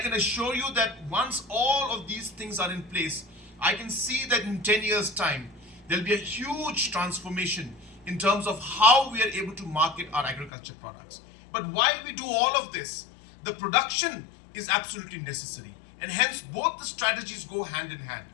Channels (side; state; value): right; drops out; at 10.5 s